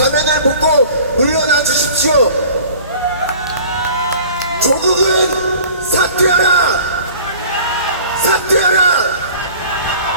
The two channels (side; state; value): both; inverted; correlation -0.45